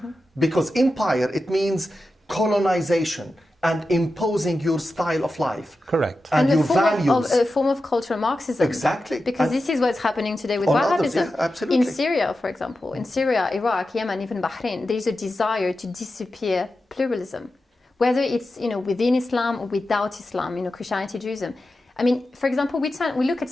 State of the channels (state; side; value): normal; both; correlation 0.92